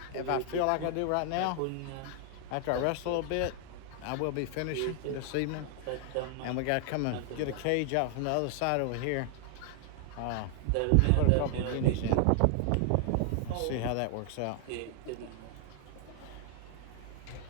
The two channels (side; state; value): both; different; correlation 0.00